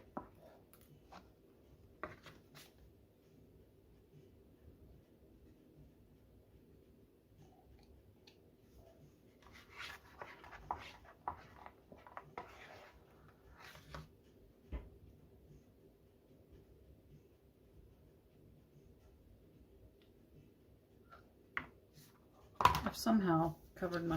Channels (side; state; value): both; identical; correlation 1.00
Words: I've somehow covered